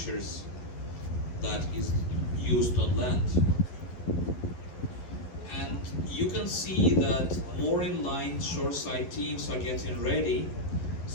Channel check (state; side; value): late; right; 11 ms